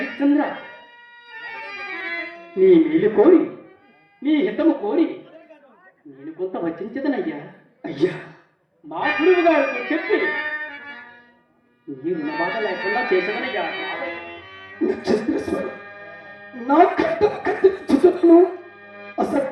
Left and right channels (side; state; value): both; identical; correlation 1.00